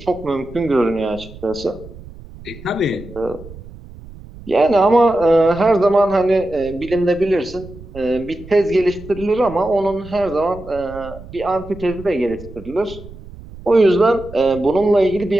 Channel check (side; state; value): right; noise; rumble, 17 dB below the sound